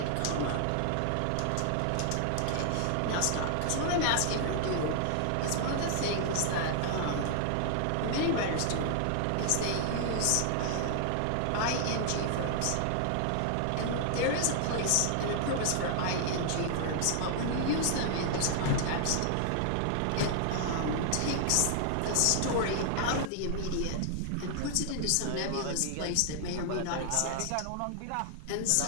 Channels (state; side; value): different; both; correlation 0.00